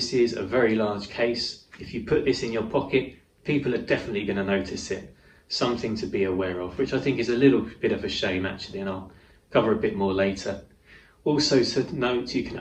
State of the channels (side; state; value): both; identical; correlation 1.00